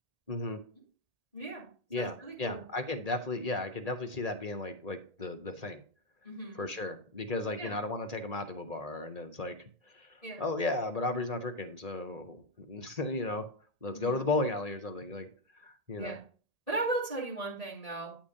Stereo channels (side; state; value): left; late; 1.8 ms